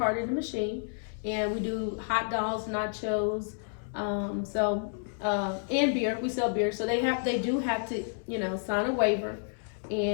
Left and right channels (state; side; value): silent; right; 58 dB below the other